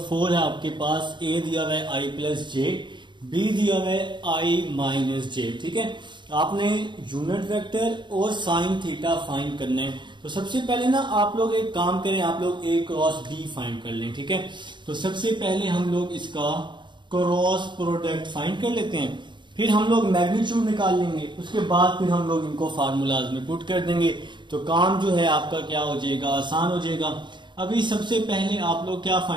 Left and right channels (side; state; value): left; late; 0.23 ms